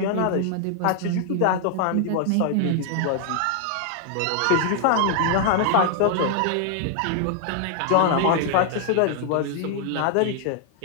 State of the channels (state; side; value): different; both; correlation 0.00